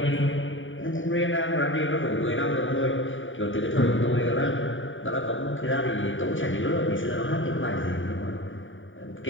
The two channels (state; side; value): late; right; 0.57 ms